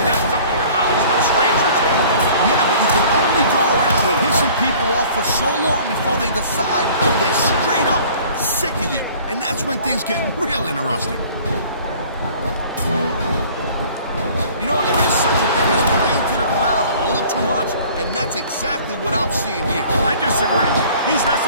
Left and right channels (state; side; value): inverted; both; correlation -0.50